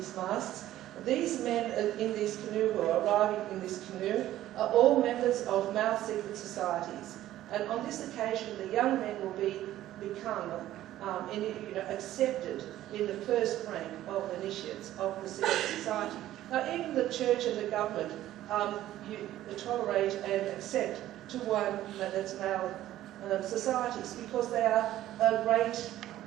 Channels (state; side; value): quieter; left; 13.7 dB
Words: masks. These men in this canoe who are arriving in this canoe are all members of male secret societies. And on this occasion, the young men will become accepted in the first rank of initiates of the secret society. Now, even the church and the government you tolerate and accept to one that's male societies, because they are great